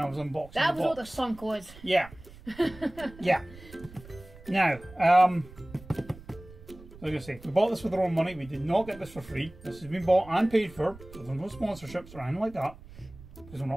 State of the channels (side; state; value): right; noise; rumble, 19 dB below the sound